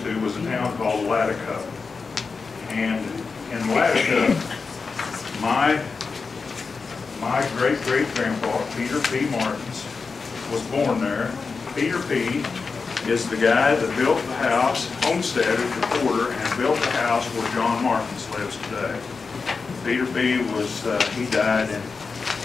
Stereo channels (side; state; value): right; quieter; 4.7 dB